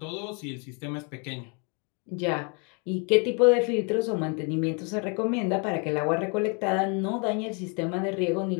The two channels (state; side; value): quieter; right; 35.7 dB